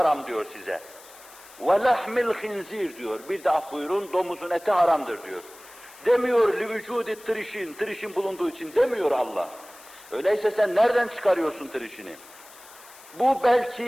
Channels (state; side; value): noise; left; hiss, 21 dB below the sound